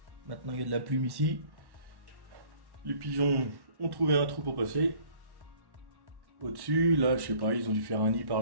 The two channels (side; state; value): left; late; 1.1 ms